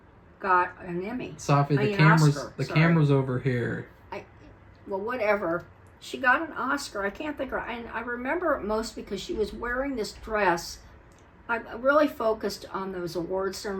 got an Emmy. Safi, the camera's over here. Well, whatever. She got an Oscar. I can't think of her. And I remember it most because she was wearing this dress. I really focused on those award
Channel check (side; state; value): both; identical; correlation 1.00